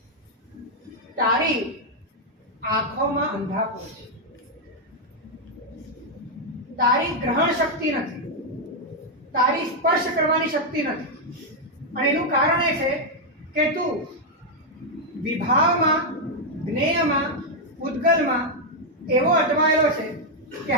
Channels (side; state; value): both; normal; correlation -0.01